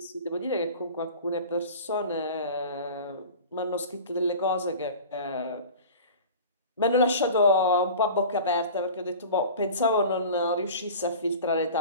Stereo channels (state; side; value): inverted; both; correlation -0.38